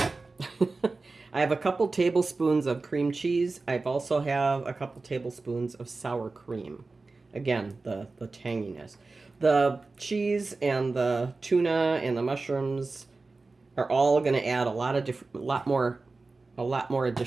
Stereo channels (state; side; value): quieter; left; 3.7 dB